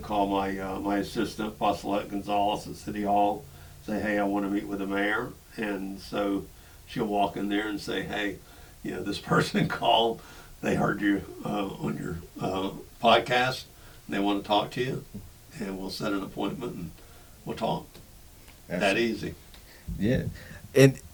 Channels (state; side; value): identical; both; correlation 1.00